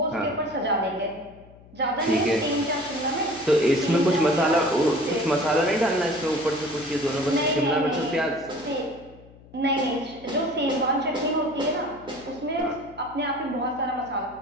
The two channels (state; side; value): noise; left; hum, 23 dB below the sound